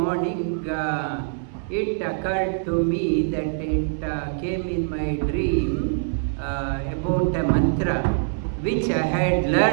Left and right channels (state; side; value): silent; left; 63 dB below the other